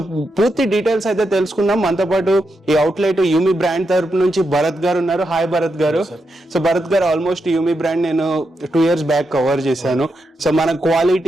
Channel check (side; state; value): both; normal; correlation 0.85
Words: పూర్తి డీటెయిల్స్ అయితే తెలుసుకుందాం. మనతో పాటు ఈ అవుట్లెట్ యూమి బ్రాండ్ తరపు నుంచి భరత్ గారు ఉన్నారు. హాయ్ భరత్ గారు. సో భరత్ గారు, ఆల్మోస్ట్ యూమి బ్రాండ్ నేను 2 years బ్యాక్ కవర్ చేశాను. సో మన